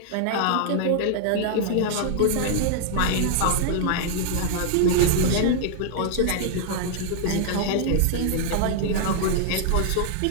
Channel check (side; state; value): both; different; correlation -0.01